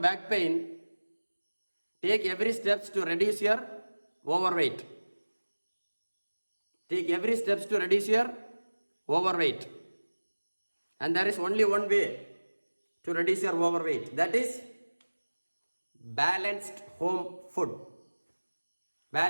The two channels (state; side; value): inverted; both; correlation -1.00